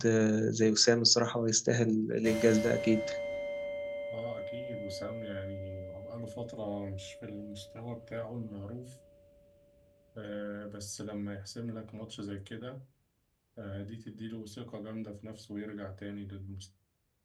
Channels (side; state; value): both; identical; correlation 1.00